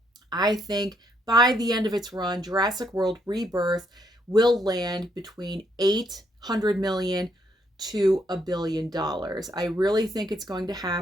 I think by the end of its run, Jurassic World Rebirth will land between 800 million to $1 billion. I really think it's going to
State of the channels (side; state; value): both; normal; correlation 0.73